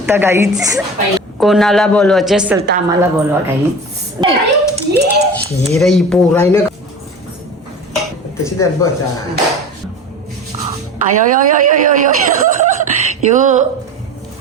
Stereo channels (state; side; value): normal; both; correlation 0.34